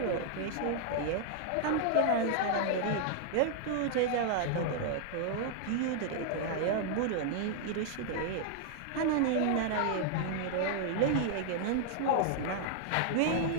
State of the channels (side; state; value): both; different; correlation -0.01